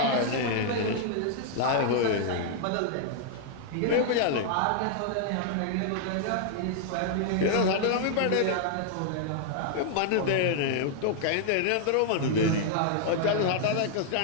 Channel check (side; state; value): both; different; correlation -0.01